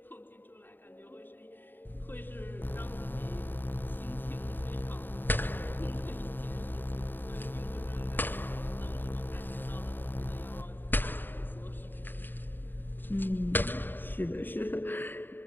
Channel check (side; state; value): right; late; 0.093 ms